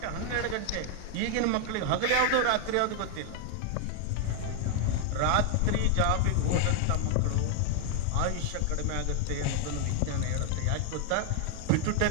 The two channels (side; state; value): both; different; correlation 0.00